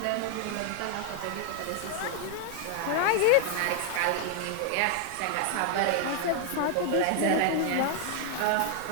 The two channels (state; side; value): different; both; correlation 0.00